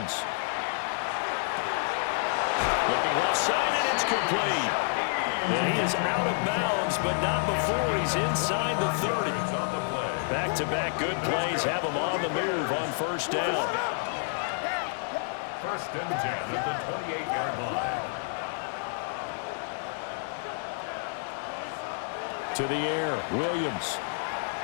Looking left side, and it's complete. And he is out of bounds, but not before he's inside the 30. Back-to-back good plays have him on the move on first down. First and 10 at the 28-yard line. To the air, Williams.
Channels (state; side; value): silent; right; digital silence